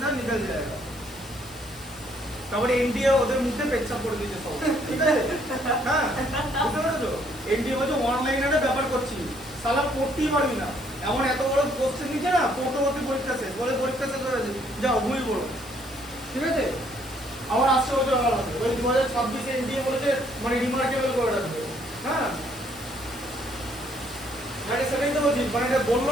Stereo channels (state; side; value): normal; both; correlation 0.67